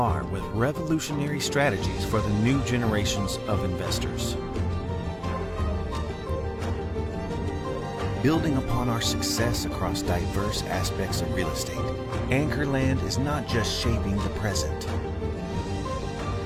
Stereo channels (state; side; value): identical; both; correlation 1.00